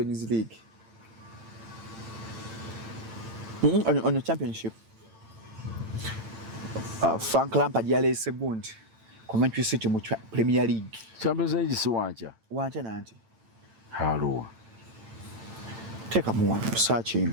League on the championship Frank Lampard yaleese gundi Coventry City mu Premier League Champions League si wancha nanti halo teka mu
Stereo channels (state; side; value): late; left; 8.9 ms